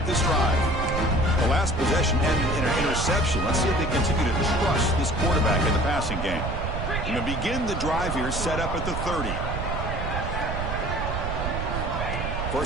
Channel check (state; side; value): noise; right; rumble, 3 dB below the sound